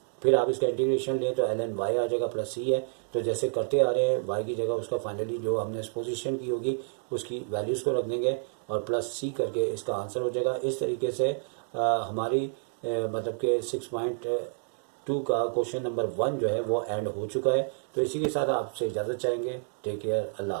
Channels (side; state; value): left; silent; digital silence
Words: फिर आप इसका इंटीग्रेशन लें तो ln y आ जाएगा, +c है। तो जैसे करते आ रहे हैं y की जगह उसका फाइनली जो हमने पोजीशन की होगी उसकी वैल्यूज़ को रख देंगे, और +c करके इसका आंसर हो जाएगा। इस तरीके से हमारी मतलब कि 6.2 का क्वेश्चन नंबर 1 जो है वो एंड हो चुका है। तो इसी के साथ आपसे इजाज़त चाहेंगे। टेक केयर, अल्लाह